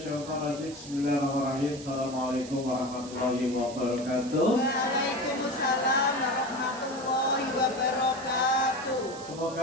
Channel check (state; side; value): noise; right; hiss, 15 dB below the sound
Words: rajim. Bismillahirrahmanirrahim. Assalamualaikum warahmatullahi wabarakatuh. Waalaikumsalam warahmatullahi wabarakatuh.